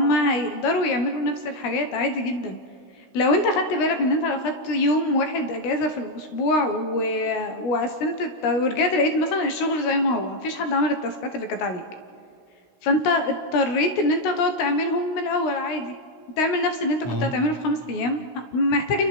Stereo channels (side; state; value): right; late; 16 ms